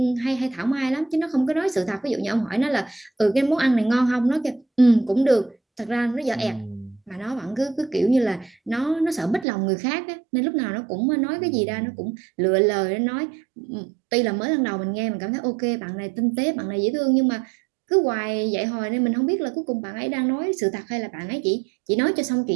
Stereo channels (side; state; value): left; drops out; at 9.5 s